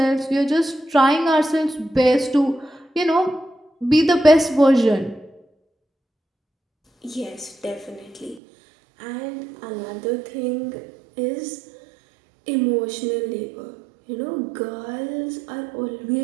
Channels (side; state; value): left; drops out; at 8.4 s